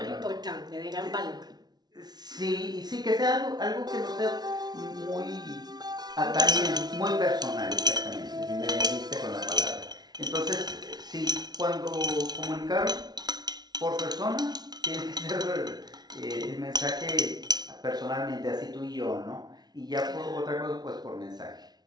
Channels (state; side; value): late; left; 0.19 ms